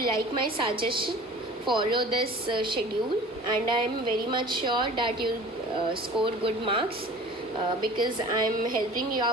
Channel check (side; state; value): both; normal; correlation 0.43